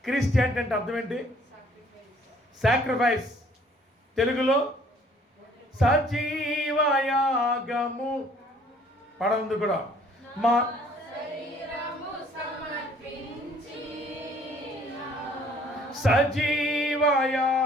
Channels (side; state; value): both; normal; correlation 0.59